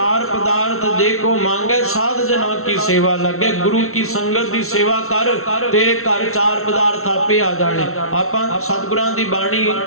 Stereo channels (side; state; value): right; late; 0.63 ms